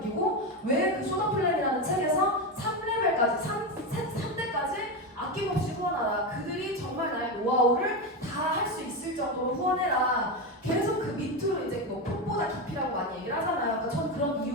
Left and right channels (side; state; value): both; normal; correlation 0.14